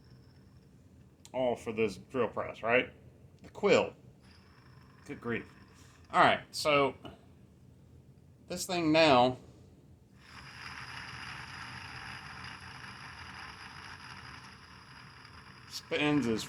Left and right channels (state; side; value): identical; both; correlation 1.00